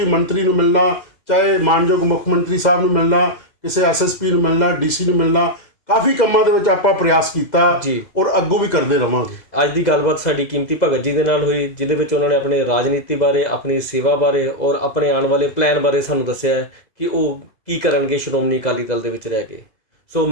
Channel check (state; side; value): late; right; 2.0 ms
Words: ਮੰਤਰੀ ਨੂੰ ਮਿਲਣਾ, ਚਾਹੇ ਮਾਨਯੋਗ ਮੁੱਖ ਮੰਤਰੀ ਸਾਹਿਬ ਨੂੰ ਮਿਲਣਾ, ਕਿਸੇ ਐਸਐਸਪੀ ਨੂੰ ਮਿਲਣਾ, ਡੀਸੀ ਨੂੰ ਮਿਲਣਾ, ਕਾਫੀ ਕੰਮਾਂ ਦੇ ਵਿੱਚ ਆਪਾਂ ਪ੍ਰਯਾਸ ਕੀਤਾ ਔਰ ਅੱਗੋਂ ਵੀ ਕਰਦੇ ਰਵਾਂਗੇ। ਅੱਜ ਦੀ ਗੱਲਬਾਤ ਸਾਡੀ ਕੀਮਤੀ ਭਗਤ ਜੀ ਦੇ ਨਾਲ ਹੋਈ, ਜਿਹਦੇ ਵਿੱਚ ਉਹਨਾਂ ਨੇ ਆਪਣੇ ਰਾਜਨੀਤੀ ਬਾਰੇ, ਆਪਣੀ ਸੇਵਾ ਬਾਰੇ ਔਰ ਆਪਣੇ ਆਉਣ ਵਾਲੇ ਪਲਾਨ ਬਾਰੇ ਸਾਨੂੰ ਦੱਸਿਆ ਹੈ ਕਿ ਉਹ ਕੀ ਕਰਨਗੇ ਸ਼੍ਰੋਮਣੀ ਅਕਾਲੀ ਦਲ ਦੇ ਵਿੱਚ ਰਹਿ ਕੇ। ਸੋ